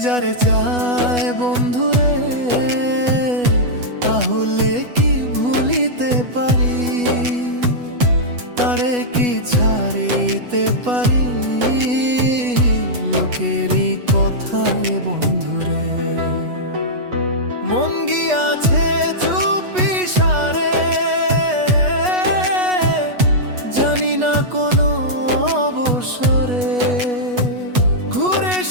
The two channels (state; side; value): late; left; 8.2 ms